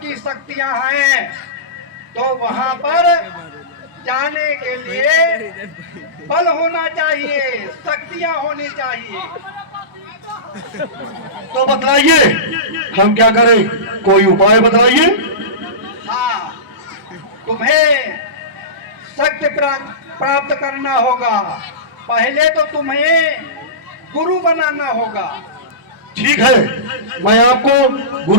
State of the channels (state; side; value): late; left; 1.0 ms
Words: शक्तियां हैं। तो वहाँ पर जाने के लिए बल होना चाहिए, शक्तियां होनी चाहिए। तो बतलाइए हम क्या करें, कोई उपाय बतलाइए। हाँ, तुम्हें शक्ति प्राप्त करना होगा। पहले तो तुम्हें गुरु बनाना होगा। ठीक है, मैं आपको